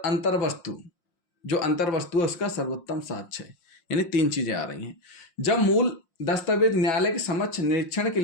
वस्तु, जो अंतर वस्तु है उसका सर्वोत्तम साक्ष्य है। यानी तीन चीजें आ रही हैं। जब मूल दस्तावेज न्यायालय के समक्ष निरीक्षण के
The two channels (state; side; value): late; right; 5.7 ms